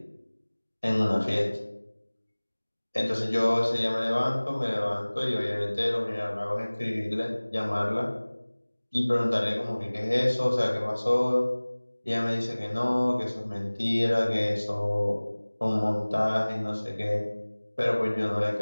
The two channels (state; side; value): inverted; both; correlation -1.00